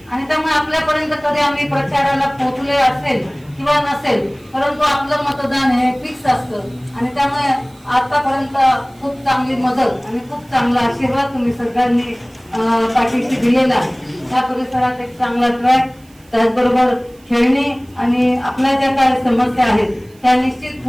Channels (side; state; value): right; noise; hiss, 30 dB below the sound